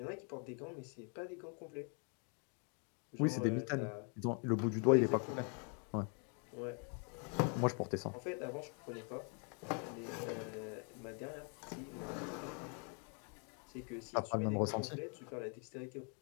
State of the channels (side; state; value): right; quieter; 40.0 dB